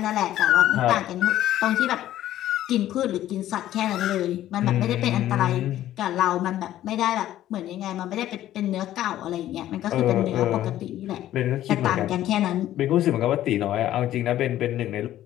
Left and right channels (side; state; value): right; quieter; 13.1 dB